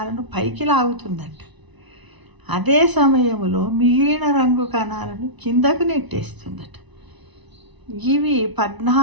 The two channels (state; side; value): late; left; 1.0 ms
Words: పైకి లాగుతుందట. అదే సమయంలో మిగిలిన రంగు కణాలను కిందకు నెట్టేస్తుందట. ఇవి